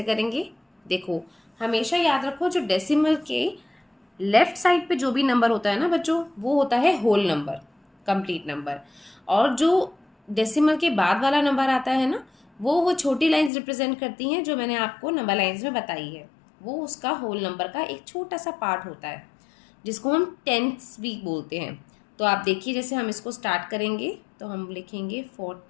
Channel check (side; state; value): right; drops out; at 13.5 s